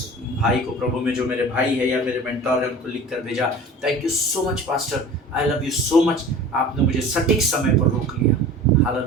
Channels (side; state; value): both; normal; correlation 0.40